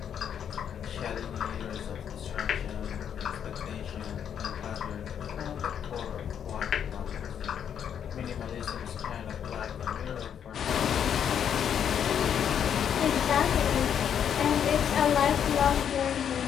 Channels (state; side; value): quieter; right; 8.6 dB